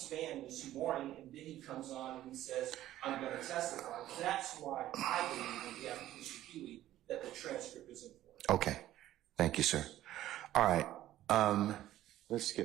this morning, and then he comes on and he says, I'm going to testify. That's why I believe in the application Huey that the transcript is important. Okay. Thank you, sir. All right. Let's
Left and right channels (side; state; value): left; quieter; 13.7 dB